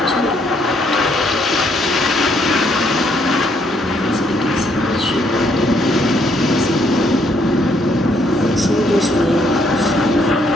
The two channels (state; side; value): normal; both; correlation 0.70